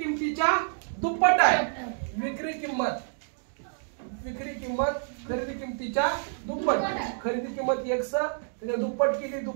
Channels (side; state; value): left; silent; digital silence